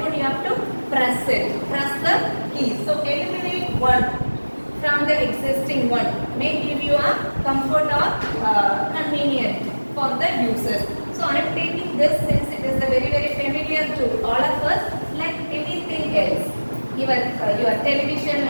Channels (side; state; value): both; inverted; correlation -1.00